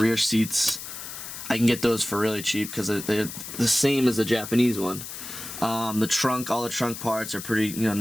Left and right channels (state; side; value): noise; left; hiss, 10 dB below the sound